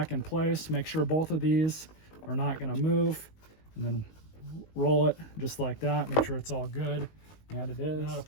in place. Make sure both of these are not going to move, and then roll it just like that. Make sure it's all good, and it is. Now to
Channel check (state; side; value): late; right; 19 ms